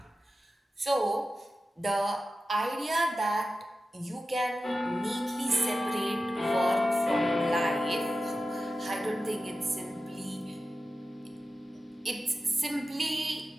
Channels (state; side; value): normal; both; correlation 0.93